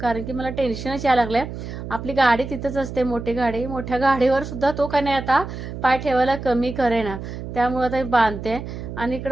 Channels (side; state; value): right; noise; hum, 8 dB below the sound